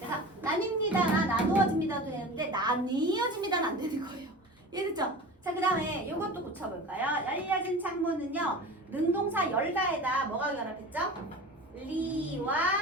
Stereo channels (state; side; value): normal; both; correlation 0.35